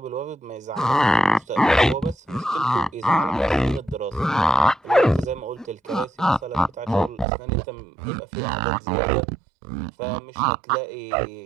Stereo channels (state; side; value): drops out; left; at 7.2 s